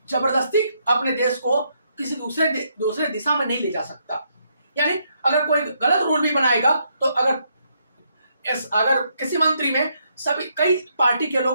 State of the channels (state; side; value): inverted; both; correlation -0.75